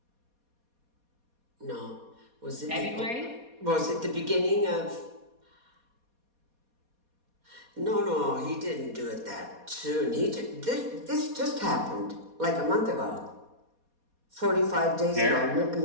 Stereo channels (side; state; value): left; late; 4.2 ms